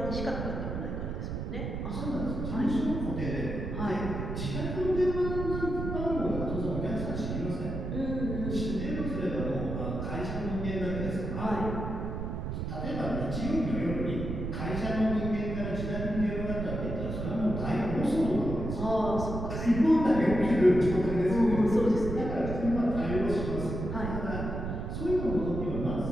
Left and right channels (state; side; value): noise; right; rumble, 4 dB below the sound